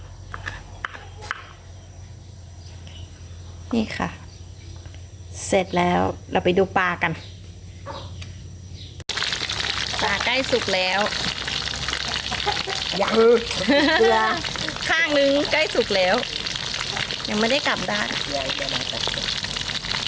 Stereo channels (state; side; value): identical; both; correlation 1.00